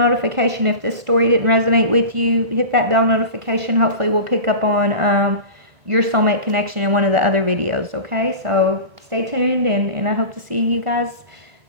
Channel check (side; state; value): left; late; 1.5 ms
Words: If this story didn't resonate with you, hit that bell notification. Hopefully we'll pick up on your soulmate connection in one of the other videos, okay? So stay tuned, and I hope to see you guys